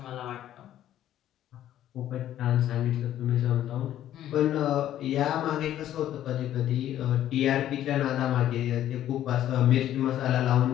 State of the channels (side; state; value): right; quieter; 12.0 dB